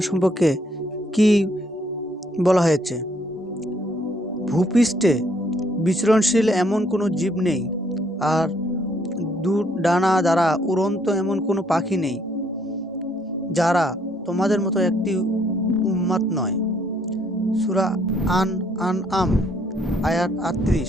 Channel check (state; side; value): normal; both; correlation 0.67